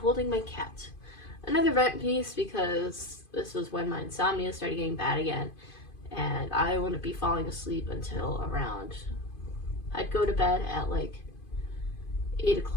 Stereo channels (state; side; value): late; right; 2.5 ms